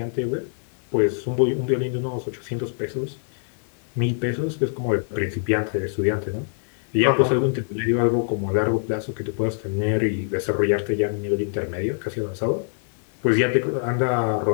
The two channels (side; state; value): right; silent; digital silence